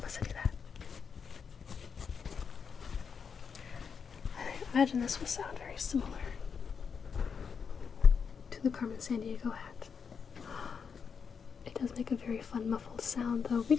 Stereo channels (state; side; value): quieter; right; 6.3 dB